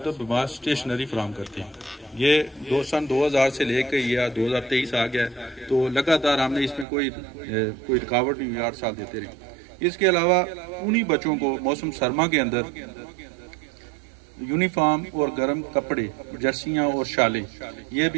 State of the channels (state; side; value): drops out; left; at 6.9 s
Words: स्टेशनरी फराम करते हैं। ये सन 2000 से लेकर या 2023 आ गया है, तो लगातार हमने इसमें कोई रुकावट नहीं हुई, 8 साल देते रहे। इसके अलावा उन्हीं बच्चों को मौसम सरमा के अंदर यूनिफॉर्म और गर्म कपड़े, जर्सियाँ और शालें, ये